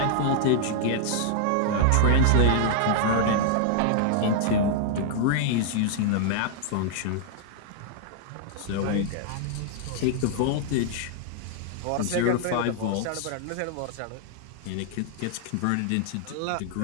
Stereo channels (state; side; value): different; both; correlation -0.01